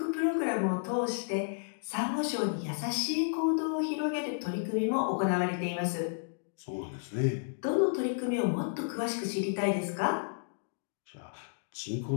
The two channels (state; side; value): silent; right; digital silence